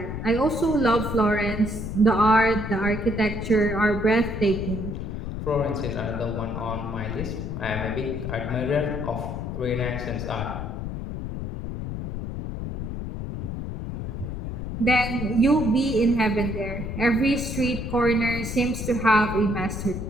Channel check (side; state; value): left; noise; rumble, 5 dB below the sound